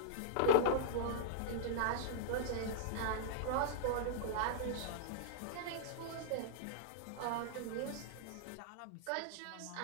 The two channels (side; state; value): both; different; correlation -0.03